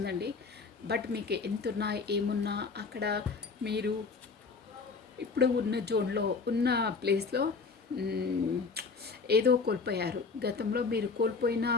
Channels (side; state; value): right; quieter; 4.7 dB